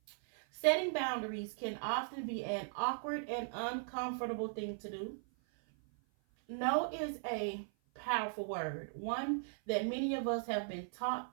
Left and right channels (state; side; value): silent; left; 52 dB below the other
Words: Setting boundaries can often be an awkward and uncomfortable thing to do. No is a powerful word, one that many of us have been taught